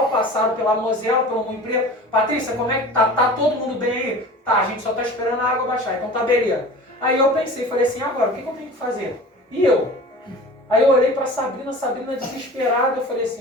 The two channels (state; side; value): normal; both; correlation 0.38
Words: passaram pela Mosela, pelo Moinho Preto. Patrícia, como é que tá? Tá todo mundo bem aí? Tá, a gente só tá esperando a água baixar, então tá beleza. Aí eu pensei, falei assim, agora, o que eu tenho que fazer? E eu? Aí eu olhei pra Sabrina desesperada, eu falei